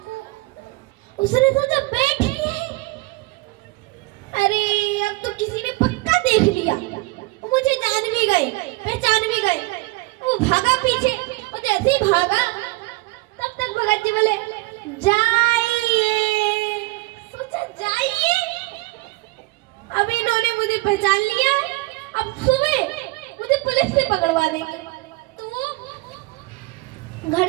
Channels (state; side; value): quieter; left; 22.6 dB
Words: उसने सोचा बैठिए, अरे अब तो किसी ने पक्का देख लिया, मुझे जान भी गए, पहचान भी गए। वो भागा पीछे, और जैसे ही भागा तब तक भगत जी बोले जाइए। सोचा जाइए, अब इन्होंने मुझे पहचान लिया, अब सुबह मुझे पुलिस से पकड़वा देंगे। तो घर